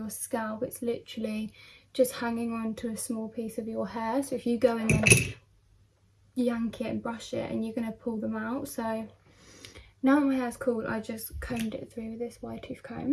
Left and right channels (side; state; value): both; identical; correlation 1.00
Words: scalp, it's literally just hanging on to a small piece of your hair. So if you go in and yank it and brush it, and you're going to pull them out. So now that my hair's cool, I just combed it through with this wide tooth